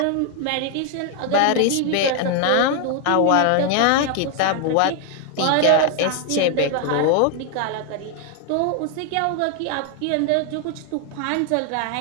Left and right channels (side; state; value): both; different; correlation 0.00